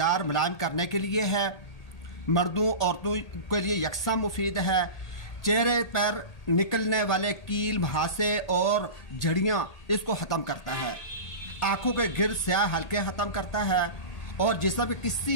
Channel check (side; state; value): right; late; 1.8 ms